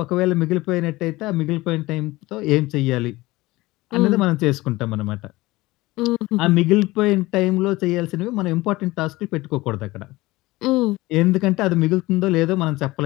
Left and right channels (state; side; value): quieter; right; 19.8 dB